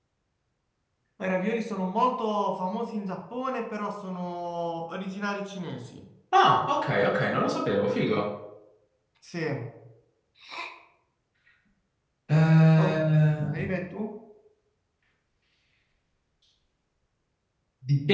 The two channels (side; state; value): both; identical; correlation 1.00